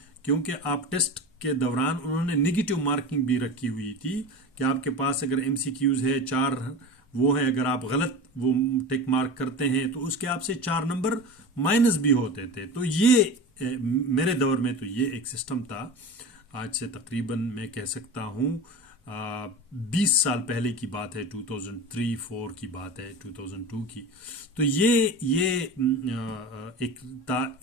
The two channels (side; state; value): both; normal; correlation 0.30